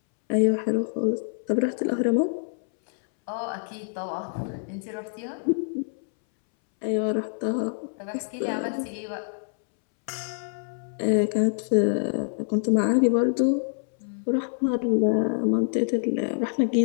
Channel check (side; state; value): right; silent; 61 dB below the other